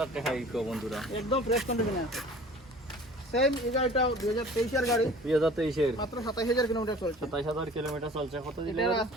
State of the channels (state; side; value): normal; both; correlation 0.46